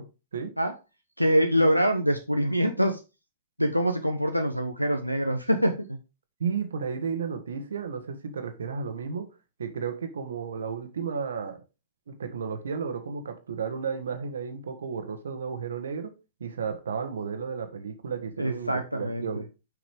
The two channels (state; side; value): inverted; both; correlation -0.83